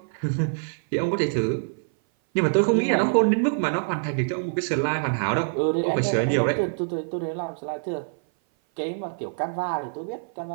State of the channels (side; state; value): left; silent; 58 dB below the other